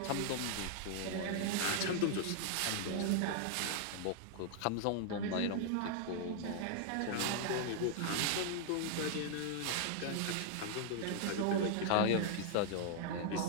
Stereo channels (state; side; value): different; both; correlation -0.01